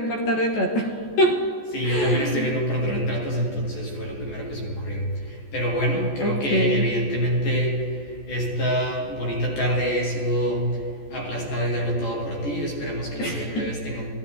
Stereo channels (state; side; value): late; right; 14 ms